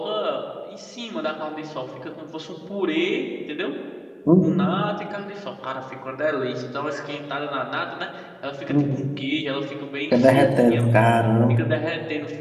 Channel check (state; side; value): identical; both; correlation 1.00